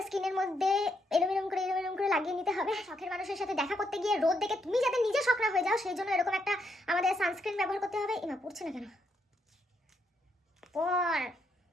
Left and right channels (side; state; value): both; normal; correlation 0.77